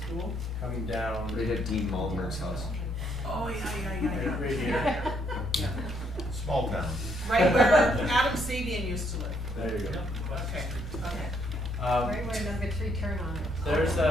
school, coming down. Right at Dean Malmer's house. Oh, yeah. Right here, Yeah. Small town. Right where Adam Sabian used to live. there you go. Okay, okay. Right where number 3 turn on it. There's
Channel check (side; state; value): both; normal; correlation 0.71